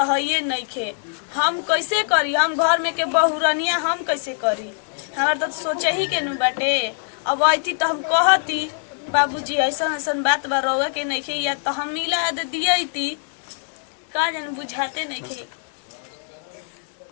है ये नहीं खे हम कैसे करी हम घर में के बहुरनिया हम कैसे करी हमार तो सोचे ही के नु बाटे अब आई तो हम कहती बाबूजी ऐसा ऐसा बात बा रहुआ के नहीं खे या तो हम मिला दे दिया थी का जन बुझाते नहीं खे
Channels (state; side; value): silent; right; 63 dB below the other